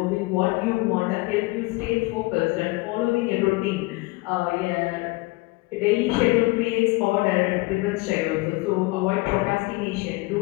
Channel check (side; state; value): right; quieter; 23.4 dB